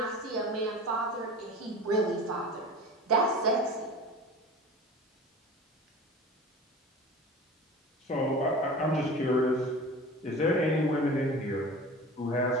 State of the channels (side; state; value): both; normal; correlation 0.37